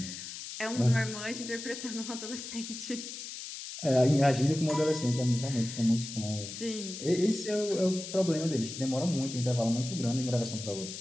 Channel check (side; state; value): left; noise; hiss, 9 dB below the sound